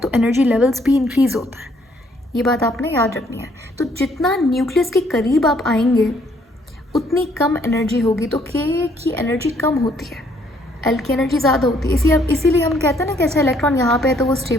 एनर्जी लेवल्स भी इंक्रीज़ होता है, ये बात आपने याद रखनी है। तो जितना न्यूक्लियस के करीब आप आएंगे उतनी कम एनर्जी होगी, तो के की एनर्जी कम होती है, एल की एनर्जी ज़्यादा होती है। इसीलिए हम कहते हैं ना कि अच्छा इलेक्ट्रॉन यहाँ पे है तो वो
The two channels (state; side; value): normal; both; correlation 0.66